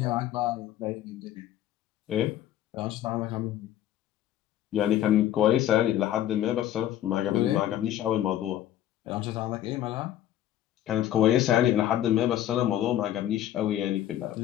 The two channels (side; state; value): right; quieter; 12.2 dB